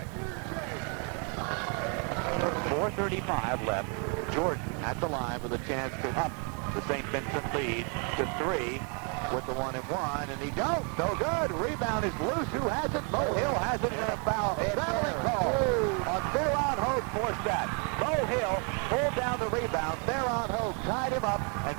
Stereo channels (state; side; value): quieter; left; 37.1 dB